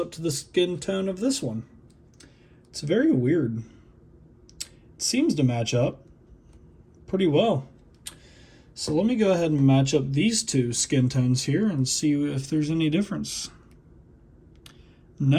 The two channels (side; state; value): both; identical; correlation 1.00